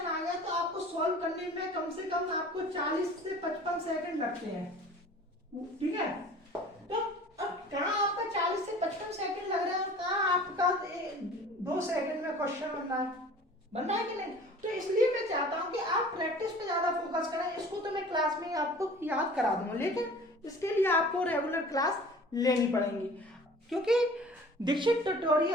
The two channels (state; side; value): normal; both; correlation 0.45